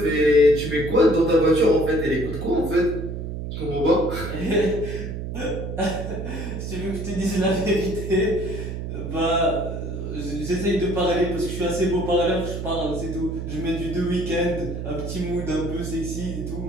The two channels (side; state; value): right; noise; hum, 5 dB below the sound